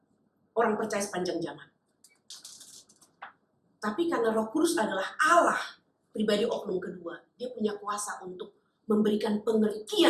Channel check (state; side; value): identical; both; correlation 1.00